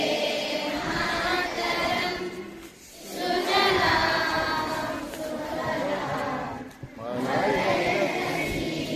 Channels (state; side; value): identical; both; correlation 1.00